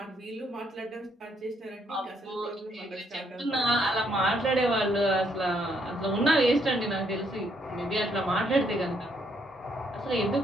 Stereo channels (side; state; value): both; normal; correlation 0.72